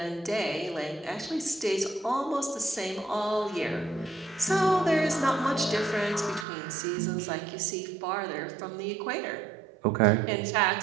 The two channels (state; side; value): drops out; left; at 6.5 s